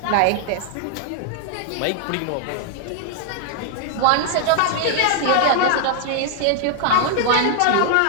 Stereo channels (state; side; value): different; both; correlation 0.00